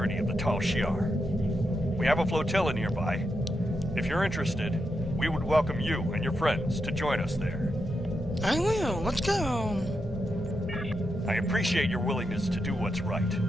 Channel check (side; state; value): both; normal; correlation 0.85